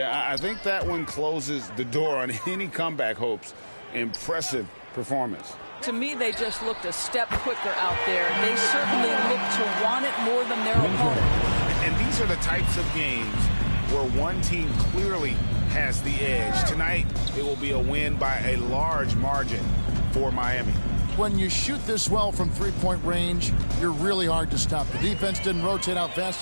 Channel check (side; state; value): both; inverted; correlation -1.00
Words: I think that one closes the door on any comeback hopes. Impressive performance. To me, they just looked a step quicker out there. They certainly looked to want it more than their opponent. And these are the types of games where one team clearly has the edge. Tonight, it will be a win by a large margin for Miami. when you shoot this well from three-point range, you're really hard to stop. The defense didn't rotate out fast